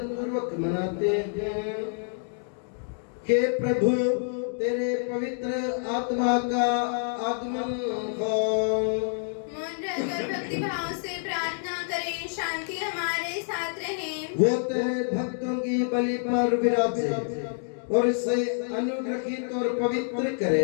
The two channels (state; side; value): silent; right; digital silence